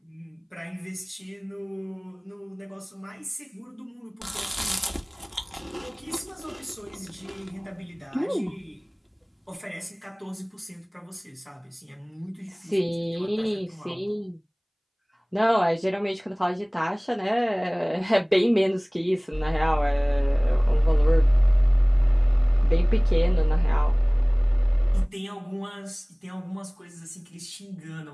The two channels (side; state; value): both; identical; correlation 1.00